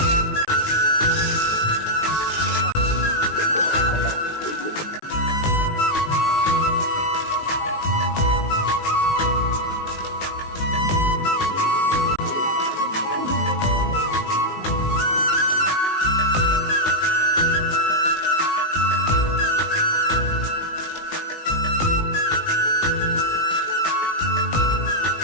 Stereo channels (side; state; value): right; late; 19 ms